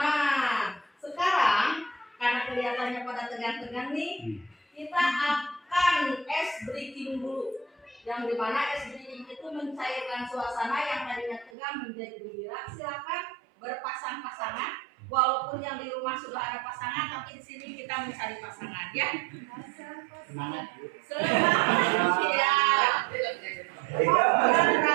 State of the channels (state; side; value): drops out; left; at 11.5 s